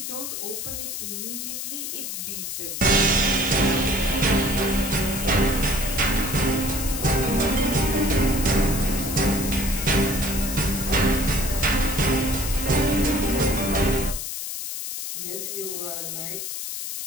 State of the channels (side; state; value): left; noise; hiss, 5 dB below the sound